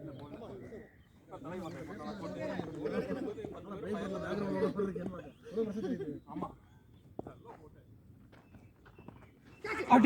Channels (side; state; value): both; identical; correlation 1.00